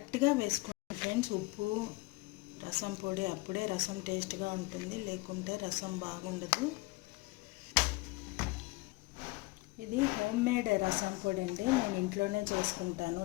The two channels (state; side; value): quieter; right; 23.0 dB